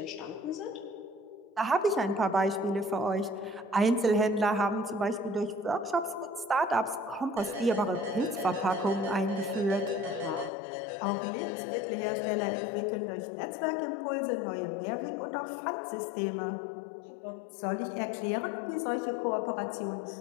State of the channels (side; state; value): right; drops out; at 10.5 s